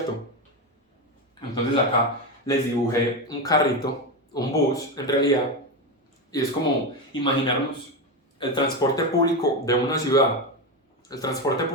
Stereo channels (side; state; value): both; normal; correlation 0.14